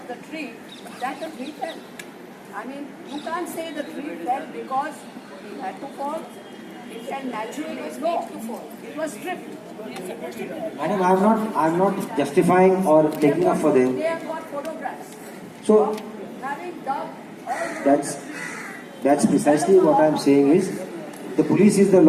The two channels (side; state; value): both; identical; correlation 1.00